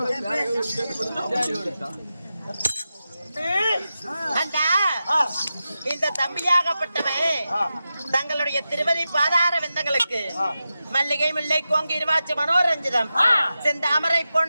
இந்த தம்பியாகப்பட்டவன் தங்களுடைய திருமதி பாதார விந்தங்களுக்கு மல்லிகை முல்லை கோங்கி இருவாச்சு மனோரஞ்சிதம் செந்தாமரை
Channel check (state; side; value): inverted; both; correlation -0.91